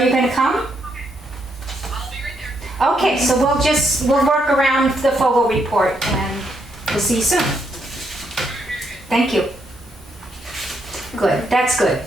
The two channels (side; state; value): both; normal; correlation 0.76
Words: you gonna come? I'll be right there. Okay, so we'll work around the Fogel report and we'll see you soon. Thank you. Good, that's good.